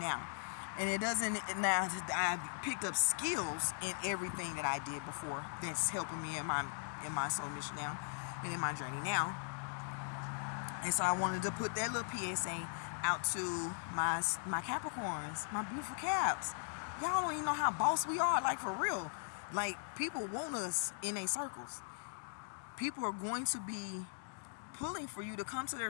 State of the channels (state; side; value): silent; right; digital silence